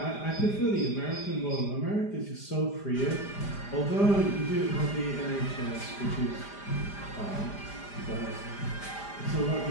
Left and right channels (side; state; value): right; late; 5.0 ms